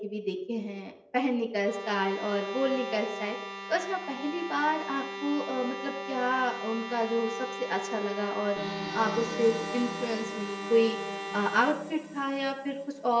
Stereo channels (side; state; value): both; identical; correlation 1.00